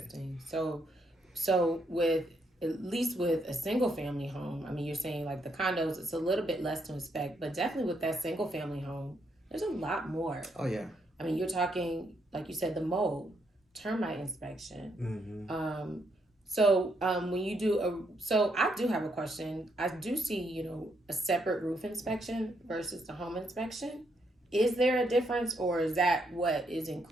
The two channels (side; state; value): both; normal; correlation 0.76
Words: So with at least with a single family home, I mean, you're saying like the condos, it's a little bit less to inspect, but definitely with that single family home, there's a lot more. Oh yeah. I mean, you're talking, like you said, the mold, termite inspection. So when you do so I do have a question. I do see, a separate roof inspection versus the home inspection. Is there a difference, or is that what is